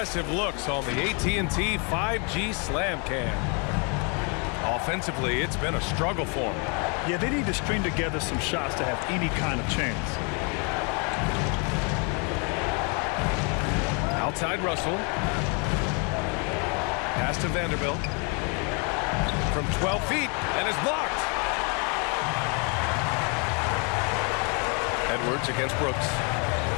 looks on the AT&T 5G Slam Cam. Offensively, it's been a struggle for him. Yeah, they need to string together some shots to have any kind of chance. Outside Russell. Pass to Vanderbilt. From 12 feet, and is blocked. Edwards against Brooks.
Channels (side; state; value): right; quieter; 35.0 dB